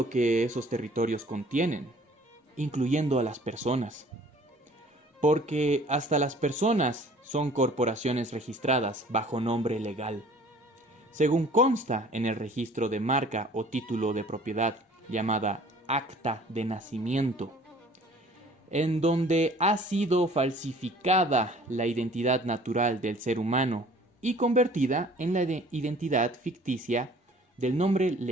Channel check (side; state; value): both; normal; correlation 0.51